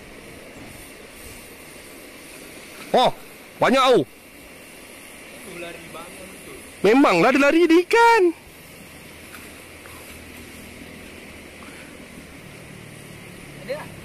Oh, banyak tau. Memanglah dia lari di ikan. Ada tak?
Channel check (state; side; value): identical; both; correlation 1.00